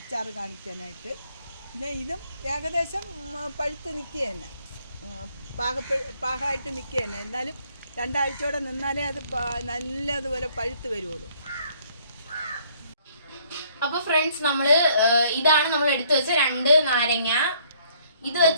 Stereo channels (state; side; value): inverted; both; correlation -0.63